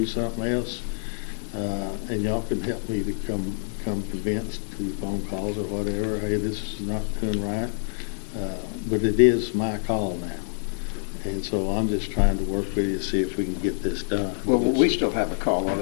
something else, and y'all can help me to come convinced through phone calls or whatever, hey, this is not doing right, but it is my call now. And so I'm just trying to work with you to see if we can get this done. Well, we still have a call on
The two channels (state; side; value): silent; right; digital silence